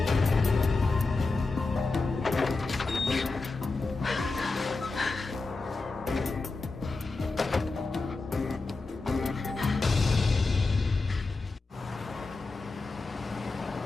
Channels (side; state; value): right; quieter; 3.7 dB